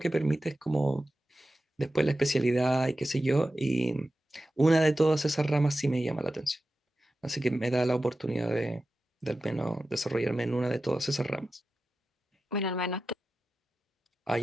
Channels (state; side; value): normal; both; correlation 0.93